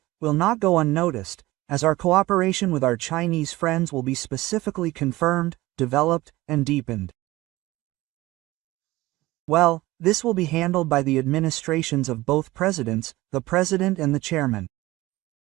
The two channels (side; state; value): left; quieter; 18.6 dB